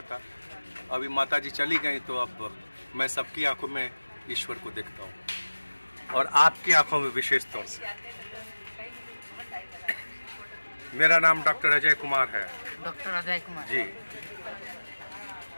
था। अभी माता जी चली गई तो अब मैं सबकी आंखों में ईश्वर को देखता हूँ, और आपकी आंखों में विशेष तौर से। मेरा नाम डॉक्टर अजय कुमार है। डॉक्टर अजय कुमार जी,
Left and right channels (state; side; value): inverted; both; correlation -1.00